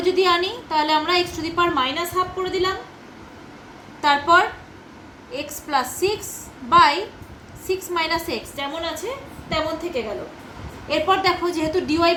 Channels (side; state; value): both; identical; correlation 1.00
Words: যদি আনি তাহলে আমরা x to the power minus half করে দিলাম। তারপর x plus 6 by 6 minus x যেমন আছে তেমন থেকে গেল। এরপর দেখো যেহেতু ডিওয়াই